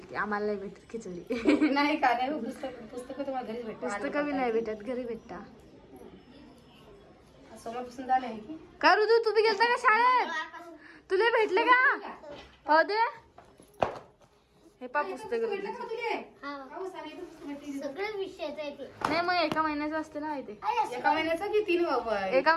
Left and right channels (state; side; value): identical; both; correlation 1.00